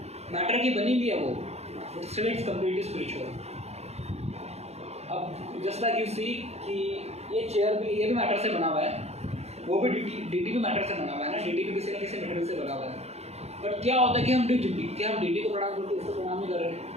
Matter की बनी हुई है वो, but still it's completely spiritual. अब जस्ट लाइक यू सी कि ये चेयर भी, ये भी मैटर से बना हुआ है, वो भी डीटी भी मैटर से बना हुआ है ना, डीटी भी किसी न किसी मटेरियल से बना हुआ है। बट क्या होता है कि हम डीटी को प्रणाम करते, इसको प्रणाम नहीं कर रहे,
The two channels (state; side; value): late; left; 0.31 ms